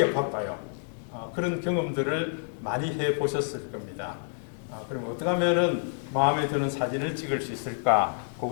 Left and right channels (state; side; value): silent; right; digital silence